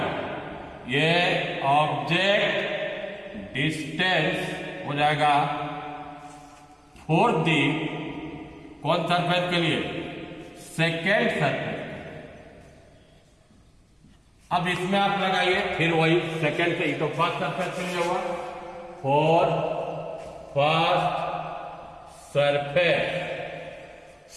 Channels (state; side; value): identical; both; correlation 1.00